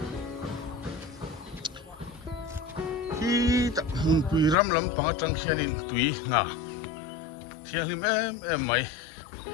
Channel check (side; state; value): right; drops out; at 4.5 s